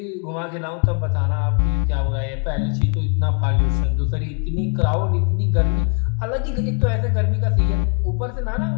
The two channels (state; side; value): quieter; right; 39.7 dB